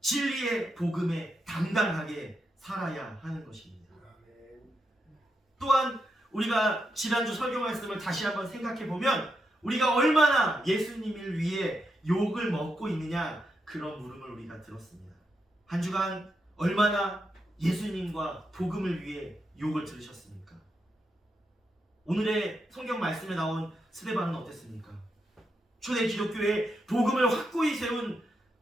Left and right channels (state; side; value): normal; both; correlation 0.84